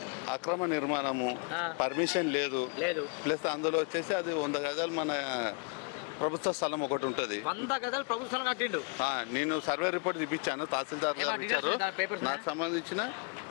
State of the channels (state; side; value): quieter; right; 35.5 dB